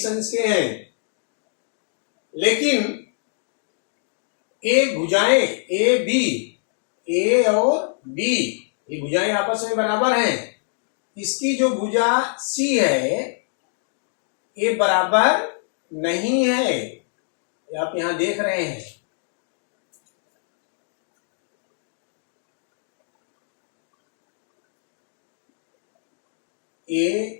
अंश के हैं, लेकिन एक भुजाएं ए बी, ए और बी, ये भुजाएं आपस में बराबर हैं। इसकी जो भुजा सी है, ये बराबर नहीं है, ये आप यहां देख रहे हैं। ए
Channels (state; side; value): silent; right; digital silence